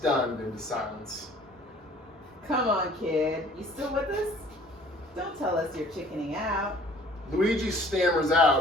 into silence. Come on, kid. You still with us? Don't tell us you're chickening out. Luigi stammers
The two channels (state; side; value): normal; both; correlation 0.53